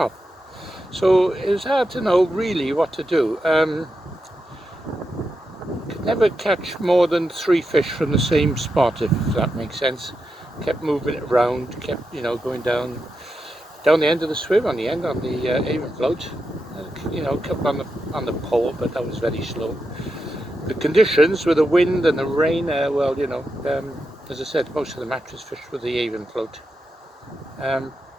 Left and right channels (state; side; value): normal; both; correlation 0.87